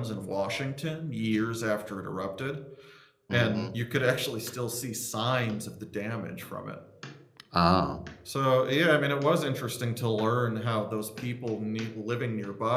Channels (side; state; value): both; identical; correlation 1.00